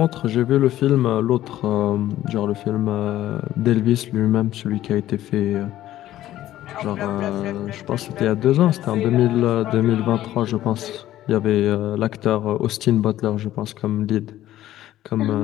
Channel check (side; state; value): right; quieter; 13.7 dB